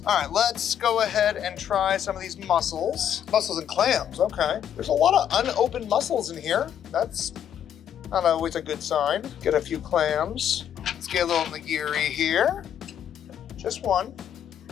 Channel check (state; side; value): quieter; right; 9.5 dB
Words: All right, let's go ahead and try some of these mussels. Mussels and clams, okay. There's a lot of unopened mussels in here. That's not always a good sign. Get a few clams. Let's get a little nigiri here. Just one.